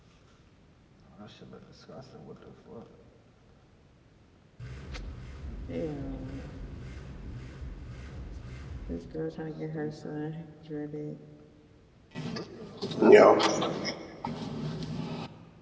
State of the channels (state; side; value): identical; both; correlation 1.00